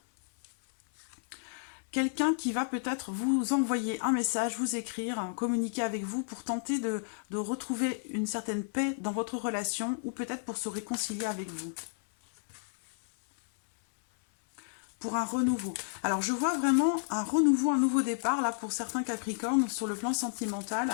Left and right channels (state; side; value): silent; right; 57 dB below the other